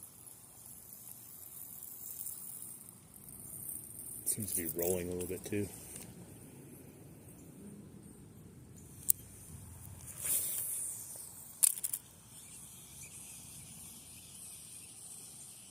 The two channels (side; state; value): both; normal; correlation 0.94